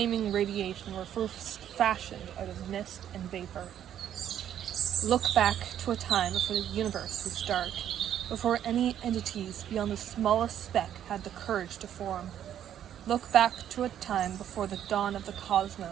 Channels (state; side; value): quieter; left; 10.4 dB